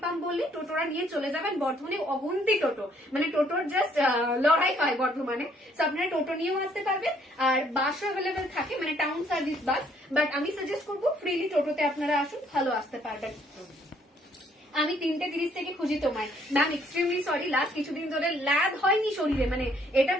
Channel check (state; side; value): normal; both; correlation 0.65